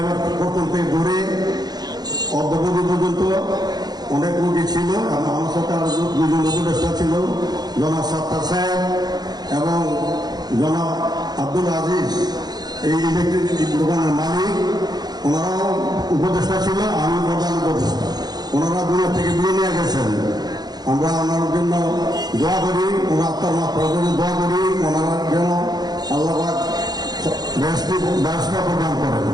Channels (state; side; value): late; left; 0.19 ms